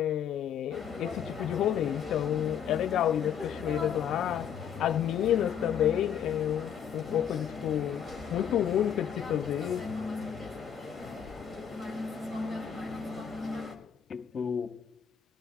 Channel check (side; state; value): right; quieter; 8.5 dB